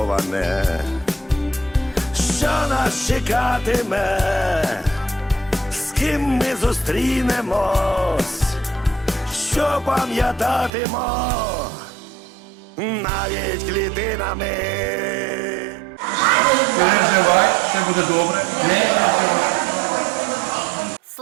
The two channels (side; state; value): left; drops out; at 10.7 s